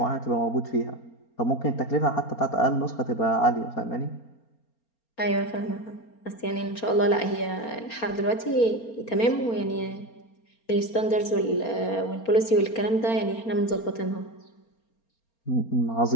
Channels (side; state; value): right; late; 4.3 ms